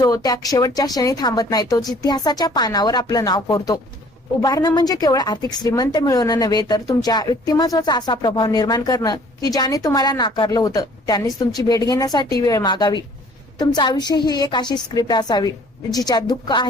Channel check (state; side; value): normal; both; correlation 0.55